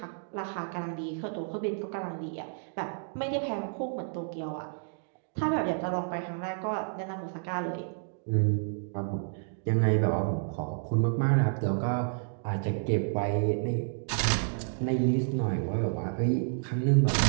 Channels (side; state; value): left; silent; digital silence